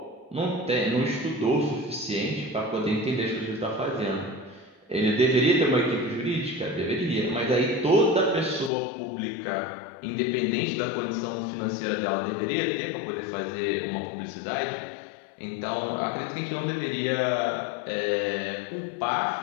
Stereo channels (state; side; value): drops out; right; at 8.7 s